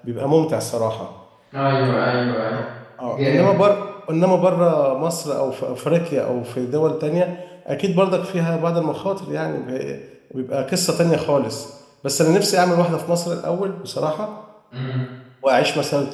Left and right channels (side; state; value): both; identical; correlation 1.00